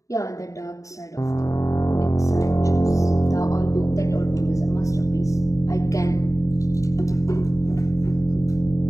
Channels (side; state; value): right; late; 0.16 ms